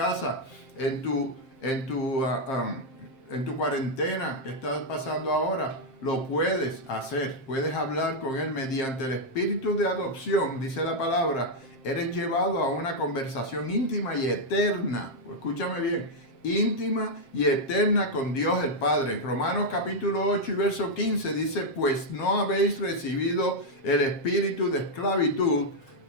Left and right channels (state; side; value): late; right; 7.5 ms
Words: en tu cuarentena que estás pasando ahora, lo puedes hacer, puedes hablar con Él mediante el espíritu de adopción, dice la palabra, eres llevado a una conversación íntima y eterna, escúchame bien, íntima y eterna con Dios el Padre. Romanos capítulo 8 y verso 15 dice, pues no habéis recibido el espíritu de esclavitud